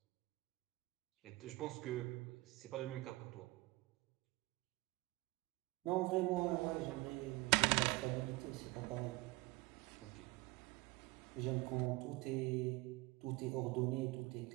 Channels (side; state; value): left; quieter; 22.0 dB